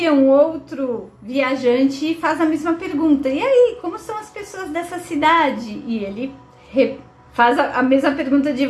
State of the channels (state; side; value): identical; both; correlation 1.00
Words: um outro viajante e faz a mesma pergunta: e aí, como são as pessoas dessa cidade? E ele faz a mesma pergunta de